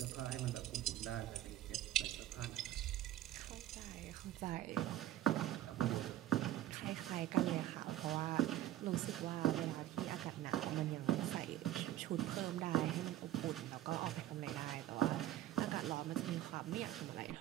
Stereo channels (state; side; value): quieter; left; 13.6 dB